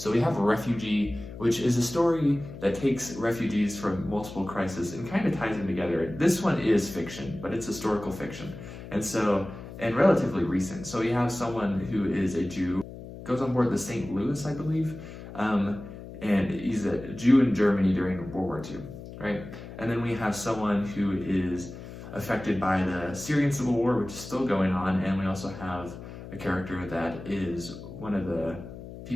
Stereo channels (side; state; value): left; noise; hum, 13 dB below the sound